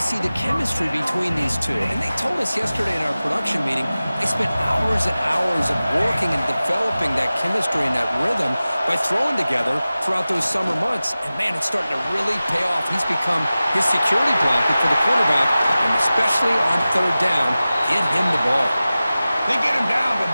the chemistry between these two. And they told us yesterday in our production meeting, they spent hours and hours of working and developing that chemistry and that rhythm by throwing together throughout those summer months. And, man, it's starting to really pay off. He's become his security blanket for the quarterback, and especially on third down, get him the ball. They get him down, but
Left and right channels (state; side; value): inverted; both; correlation -0.96